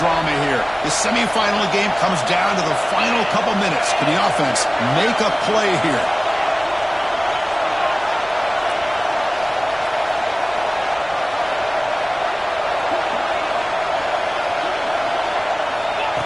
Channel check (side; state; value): right; noise; rumble, 22 dB below the sound